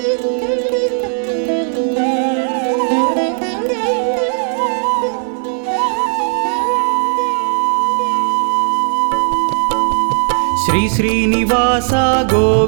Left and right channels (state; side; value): silent; left; 68 dB below the other